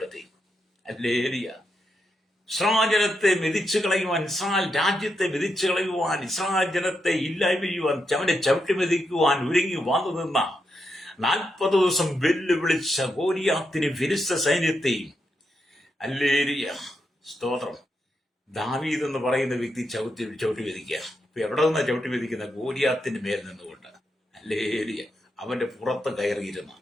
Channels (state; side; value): normal; both; correlation 0.83